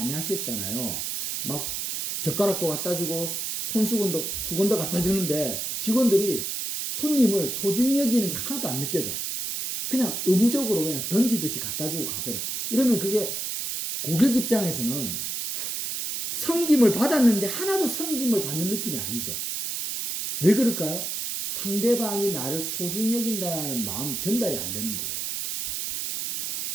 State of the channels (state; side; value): noise; right; hiss, 3 dB below the sound